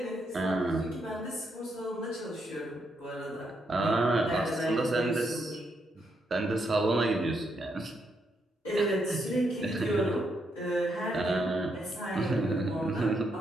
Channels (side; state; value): both; normal; correlation 0.78